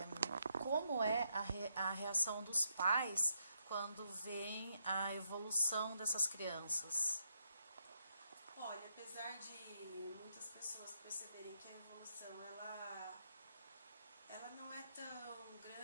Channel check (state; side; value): inverted; both; correlation -0.79